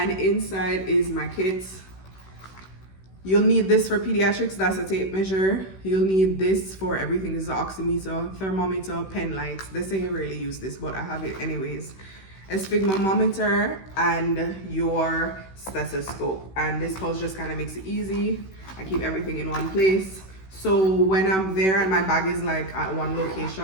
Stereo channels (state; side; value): late; right; 16 ms